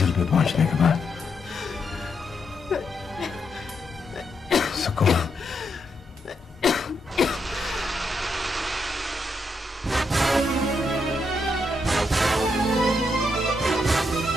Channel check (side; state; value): both; normal; correlation 0.80